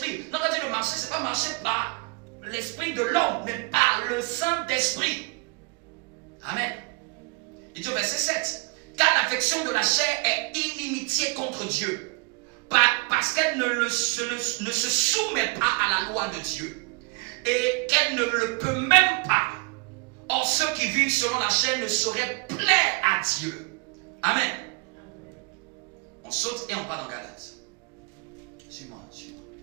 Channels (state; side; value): quieter; left; 31.8 dB